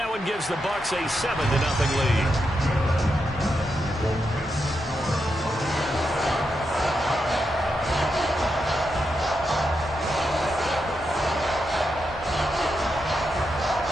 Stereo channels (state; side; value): normal; both; correlation 0.85